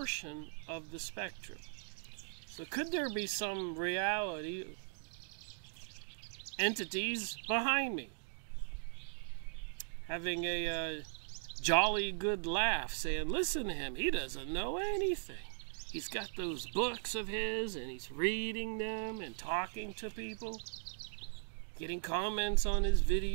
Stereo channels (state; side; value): silent; left; digital silence